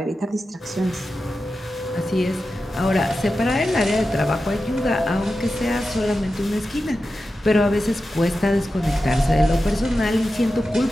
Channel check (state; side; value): normal; both; correlation 0.92